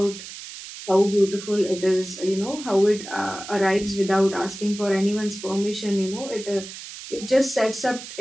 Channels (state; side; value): noise; right; hiss, 12 dB below the sound